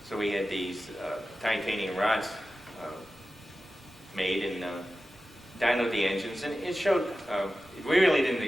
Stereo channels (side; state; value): both; normal; correlation 0.94